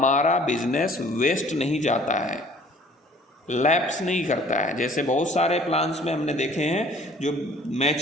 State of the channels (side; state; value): both; normal; correlation 0.53